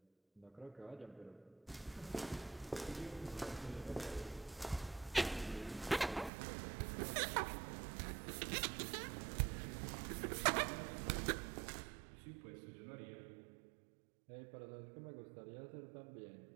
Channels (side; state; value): left; drops out; at 6.3 s